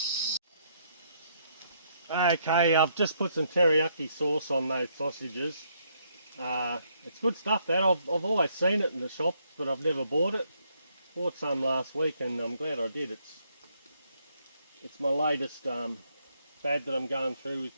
Okay, I've just put some teriyaki sauce on those sausages. It's good stuff, that. I've always seen it in the shop, but I've never bought it. Bought some last week and I'm glad I did. It's my latest fad that I'm going through with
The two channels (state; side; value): inverted; both; correlation -0.72